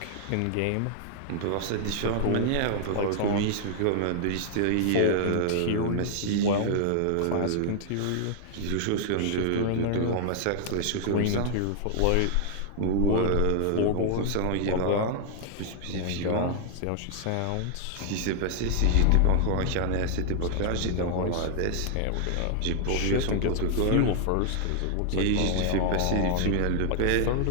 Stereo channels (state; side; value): different; both; correlation 0.00